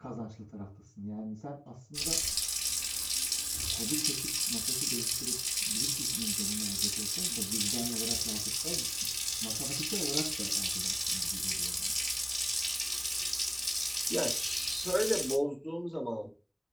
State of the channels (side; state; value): both; identical; correlation 1.00